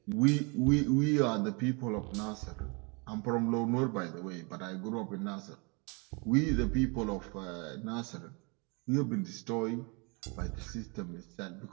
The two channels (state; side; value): quieter; left; 31.1 dB